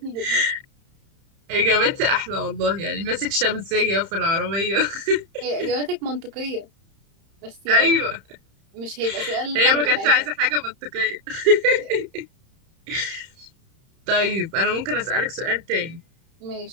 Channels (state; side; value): late; left; 31 ms